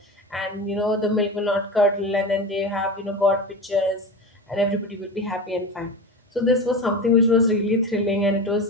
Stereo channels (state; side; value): normal; both; correlation 0.27